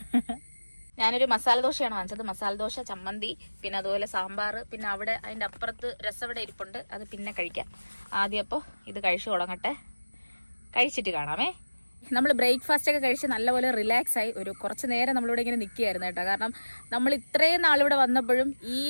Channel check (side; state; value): both; inverted; correlation -1.00